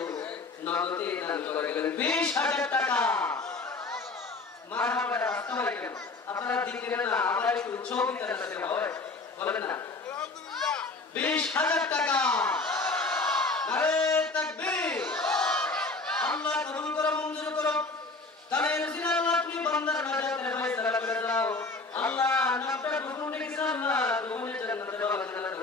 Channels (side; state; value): right; quieter; 3.7 dB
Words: নগদে দান করে গেলেন 20000 টাকা। মারহাবা। আসসালামু আলাইকুম। আপনারা দিলেন না, আমরা একটু চৌকিদার সাথে হয় বলেন না। আলহামদুলিল্লাহ 20000 টাকা। নারে তাকবীর। আল্লাহ কবুল করো, মঞ্জুর করো। তাহলে রসিনা আল্লাহ তুমি বান্দার নাজাতের ফয়সালা করে দাও। আল্লাহ নামটা কবুল লিখে আল্লাহ কবুল জান্নাতের